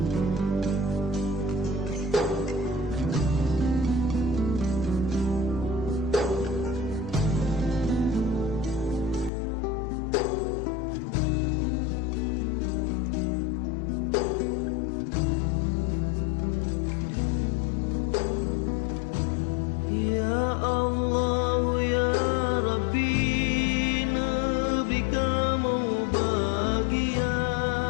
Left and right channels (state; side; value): drops out; right; at 9.3 s